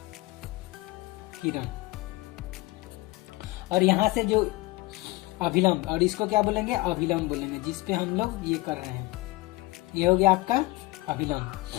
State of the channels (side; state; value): right; quieter; 21.2 dB